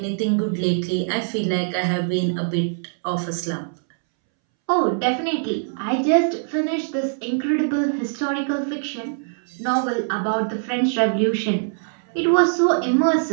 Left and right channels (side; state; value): left; silent; 64 dB below the other